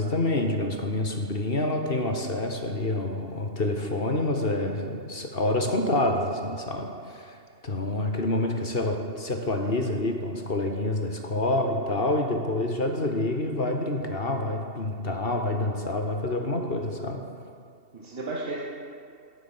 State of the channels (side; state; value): right; late; 2.7 ms